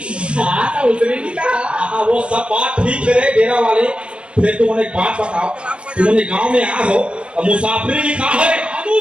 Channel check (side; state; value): left; late; 0.058 ms